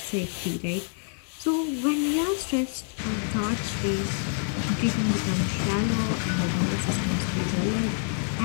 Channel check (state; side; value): silent; right; 56 dB below the other